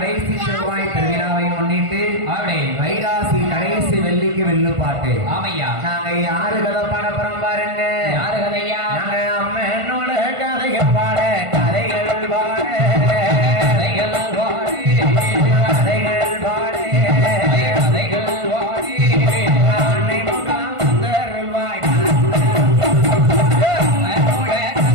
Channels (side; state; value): left; late; 1.5 ms